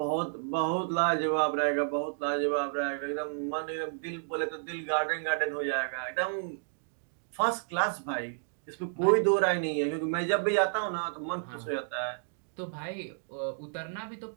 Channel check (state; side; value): silent; left; digital silence